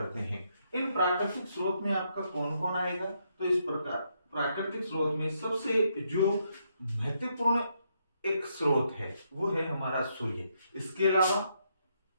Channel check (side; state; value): both; inverted; correlation -0.77